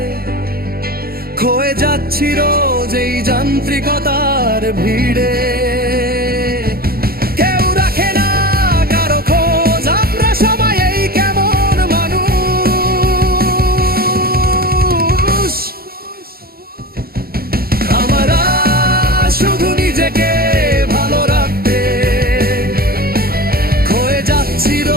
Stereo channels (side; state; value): left; late; 0.44 ms